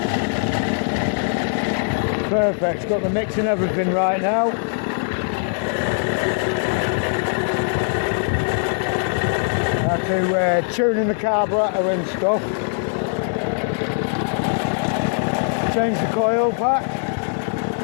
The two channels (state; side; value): silent; right; digital silence